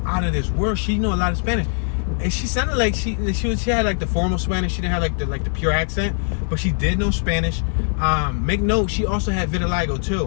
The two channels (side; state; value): right; silent; 59 dB below the other